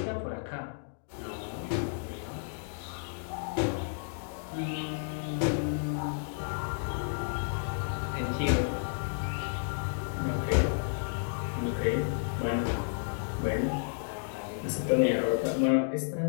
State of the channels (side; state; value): right; silent; digital silence